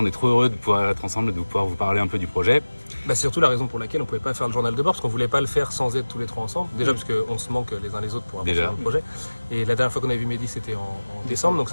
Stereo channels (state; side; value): inverted; both; correlation -1.00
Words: est trop heureux de pouvoir être ensemble et de pouvoir vous parler un peu du projet. C'est surtout la raison pour laquelle on ne pouvait pas faire le journal de bord, parce qu'on ne voulait pas le faire sans être tous les trois ensemble. Déjà parce qu'on se manque les uns les autres pour avancer dans le projet. Et la dernière fois qu'on avait vu Mehdi, c'était en décembre, donc